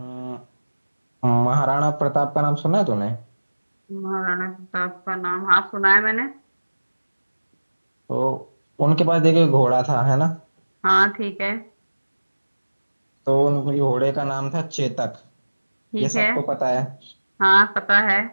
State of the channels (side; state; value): both; inverted; correlation -1.00